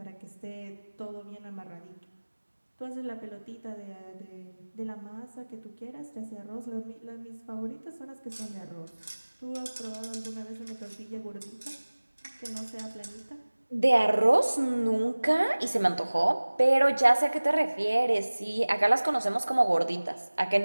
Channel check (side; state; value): both; inverted; correlation -1.00